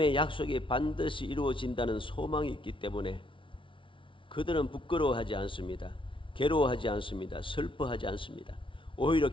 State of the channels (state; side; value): late; right; 0.25 ms